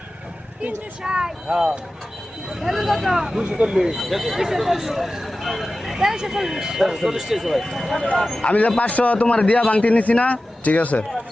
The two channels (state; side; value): normal; both; correlation 0.95